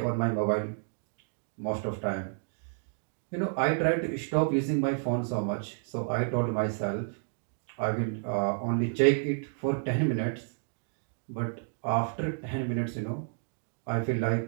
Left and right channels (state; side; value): silent; left; digital silence